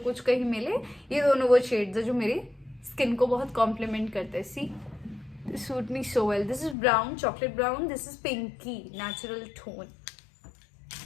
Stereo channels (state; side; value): drops out; right; at 6.8 s